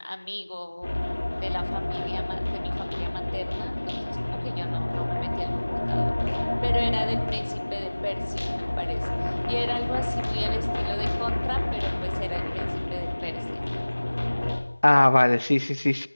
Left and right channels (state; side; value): inverted; both; correlation -1.00